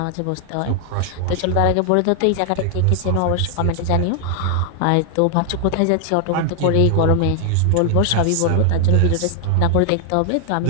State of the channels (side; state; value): both; different; correlation 0.00